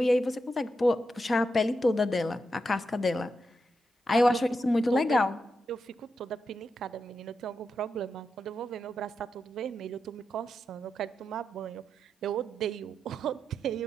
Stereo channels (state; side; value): normal; both; correlation 0.87